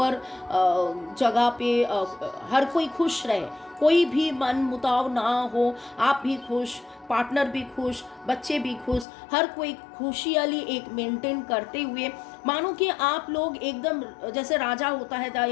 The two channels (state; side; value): drops out; right; at 9.1 s